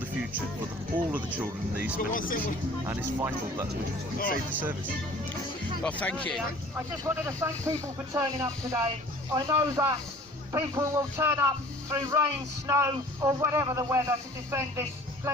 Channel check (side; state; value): both; normal; correlation 0.48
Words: future for all of the children in the East Midlands, and it's vital that we save the service. Well, thank you. I just wanted to thank people for turning up today. I know that people will turn up through rain, snow or whatever the weather to defend this